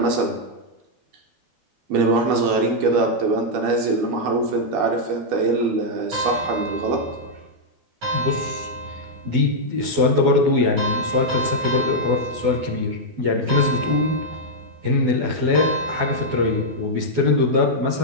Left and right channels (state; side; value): late; left; 12 ms